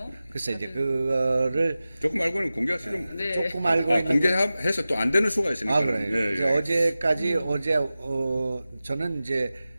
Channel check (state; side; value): inverted; both; correlation -0.95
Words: 글쎄 이제 그거를 조금 알고는 공개하시는 네. 조금 알고 있는 공개해서 또 안 되는 수가 있으니까. 그래요. 이제 어제까지 저는 이제